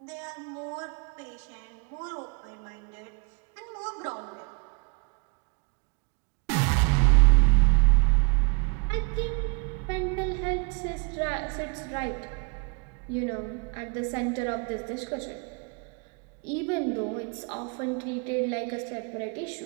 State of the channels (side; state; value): left; quieter; 32.8 dB